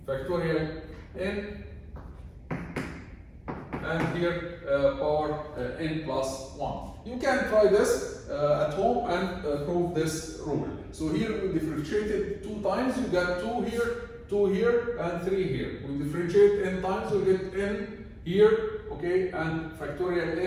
and here power n plus 1. You can try this at home and prove this rule. So here we differentiated 2 times, you got 2 here, and 3 here. We differentiate n times, we get n here, okay, and factorial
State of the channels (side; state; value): both; identical; correlation 1.00